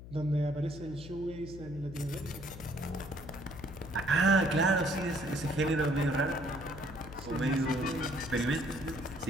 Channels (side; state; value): left; noise; hum, 14 dB below the sound